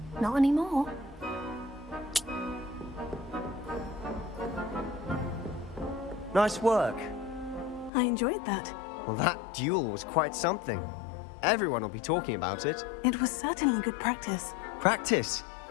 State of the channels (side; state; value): right; drops out; at 7.9 s